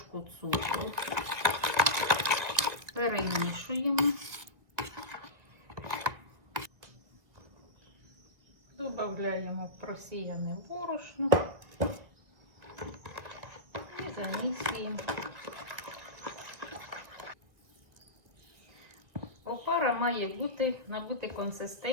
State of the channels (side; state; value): left; late; 2.1 ms